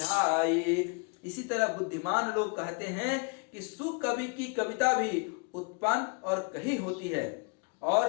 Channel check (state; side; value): quieter; right; 35.6 dB